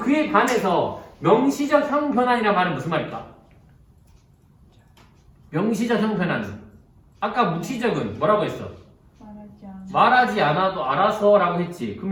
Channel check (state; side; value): identical; both; correlation 1.00